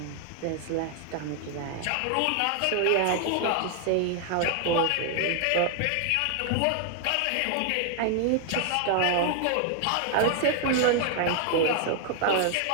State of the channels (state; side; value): different; both; correlation 0.00